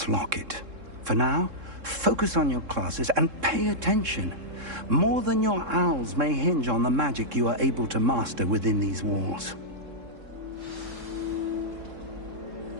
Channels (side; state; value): left; late; 3.7 ms